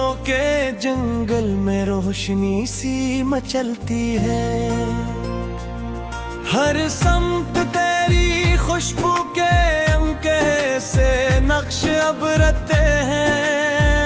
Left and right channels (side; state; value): both; identical; correlation 1.00